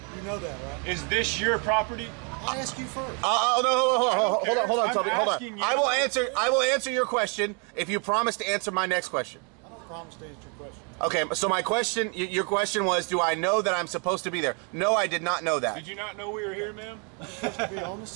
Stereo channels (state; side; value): quieter; left; 36.4 dB